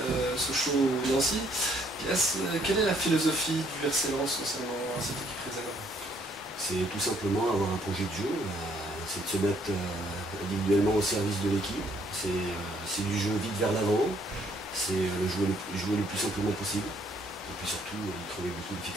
Sochaux ou Nancy. Quelle est la philosophie du RC Lens concernant cette équipe réserve? C'est tout simplement avoir un projet de jeu, c'est de se mettre individuellement au service de l'équipe, c'est du jeu vite vers l'avant, c'est jouer le plus simplement possible, et puis surtout y trouver beaucoup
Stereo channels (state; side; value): normal; both; correlation 0.66